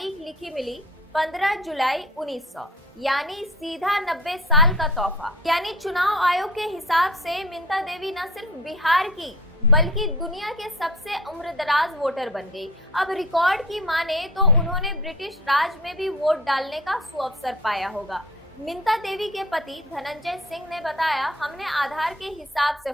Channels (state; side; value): normal; both; correlation 0.44